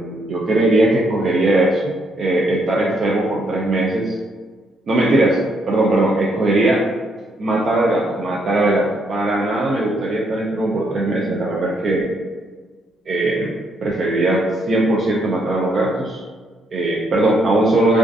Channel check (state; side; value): normal; both; correlation 0.73